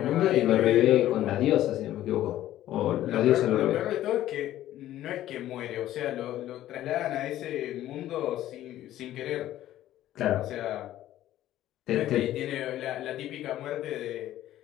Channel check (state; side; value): quieter; right; 13.4 dB